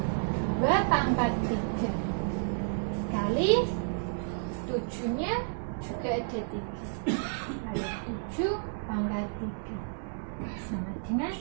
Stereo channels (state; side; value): silent; left; digital silence